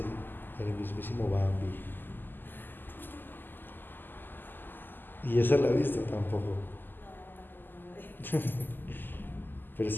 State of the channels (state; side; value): late; right; 0.091 ms